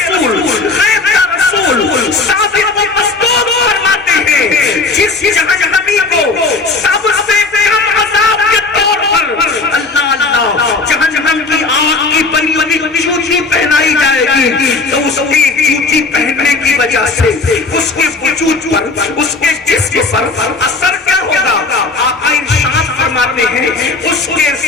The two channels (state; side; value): quieter; right; 3.8 dB